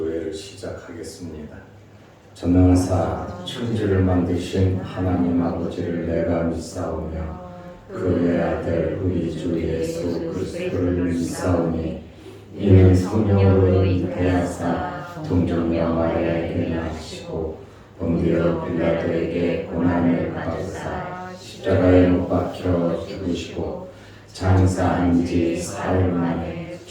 시작하겠습니다. 전능하사 천지를 만드신 하나님 아버지를 내가 믿사오며 그의 아들 우리 주 예수 그리스도를 믿사오니 이는 성령으로 잉태하사 동정녀 마리아에게 나시고 본디오 빌라도에게 고난을 받으사 십자가에 못 박혀 죽으시고 장사한 지 사흘 만에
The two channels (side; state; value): both; identical; correlation 1.00